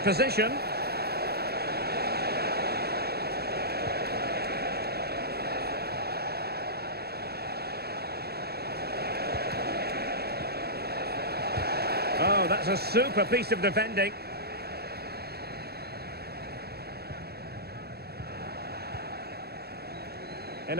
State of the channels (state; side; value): late; left; 0.46 ms